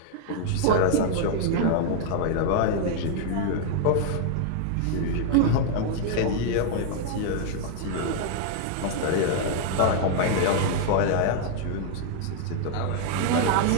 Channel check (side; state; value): both; different; correlation 0.00